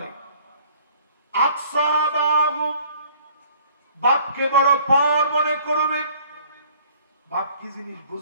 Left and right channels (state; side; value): inverted; both; correlation -0.56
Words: আকসাবাহু, বাপকে বড় পার মনে করবেন। বাপ কি জিনিস